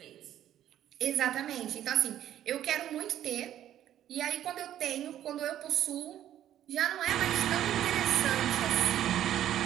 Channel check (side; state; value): left; quieter; 11.6 dB